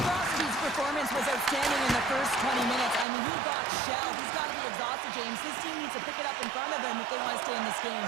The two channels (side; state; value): left; drops out; at 3.1 s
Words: Crosby's performance was outstanding in the first 20 minutes. I mean, he got shelled. He's got to be exhausted, James. This team needs to pick it up in front of him if they want to stay in this